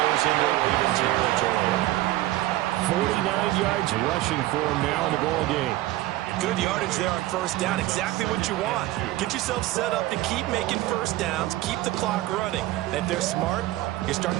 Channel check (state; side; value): quieter; left; 16.7 dB